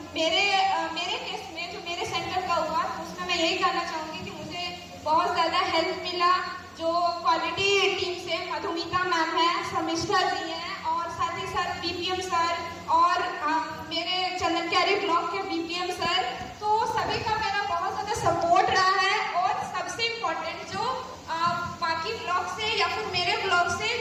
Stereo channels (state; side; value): identical; both; correlation 1.00